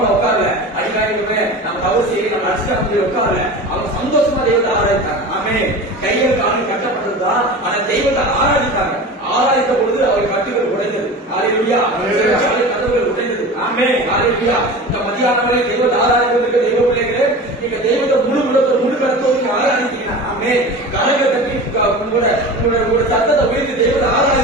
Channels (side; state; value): both; normal; correlation 0.33